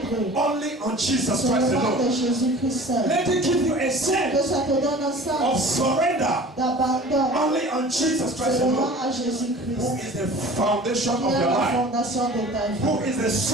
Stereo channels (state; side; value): normal; both; correlation 0.43